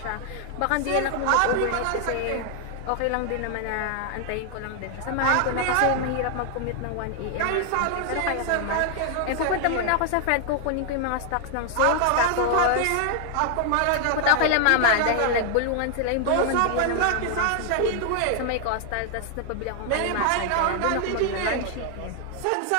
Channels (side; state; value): both; different; correlation 0.00